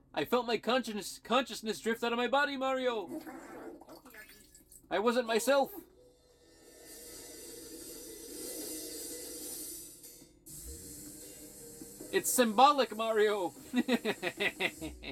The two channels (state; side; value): identical; both; correlation 1.00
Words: I felt my consciousness drift out of my body, Mario! I wasn't myself! It's symbolic, Mario!